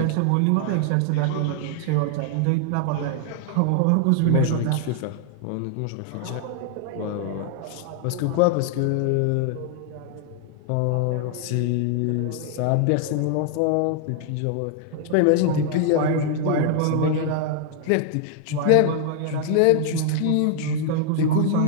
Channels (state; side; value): different; both; correlation 0.00